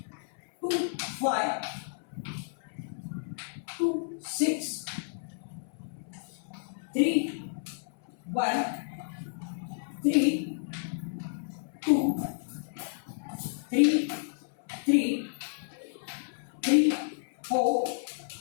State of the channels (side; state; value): right; silent; 57 dB below the other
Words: 2, 5, 2, 6, 3, 1, 3, 2, 3, 3, 3, 4,